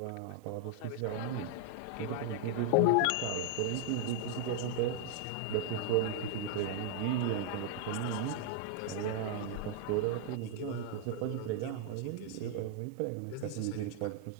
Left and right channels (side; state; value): both; different; correlation 0.00